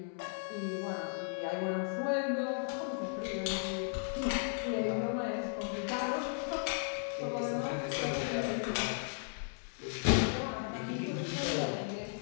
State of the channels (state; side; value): silent; right; 54 dB below the other